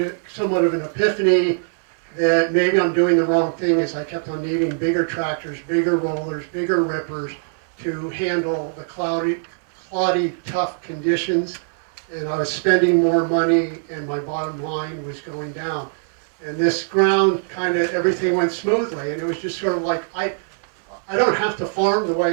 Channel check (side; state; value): left; silent; 64 dB below the other